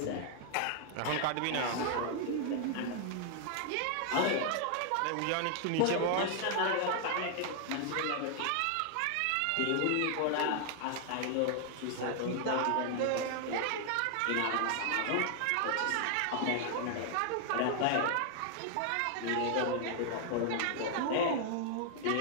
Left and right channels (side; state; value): both; different; correlation 0.00